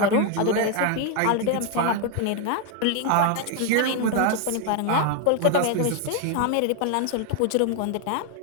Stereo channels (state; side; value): different; both; correlation 0.01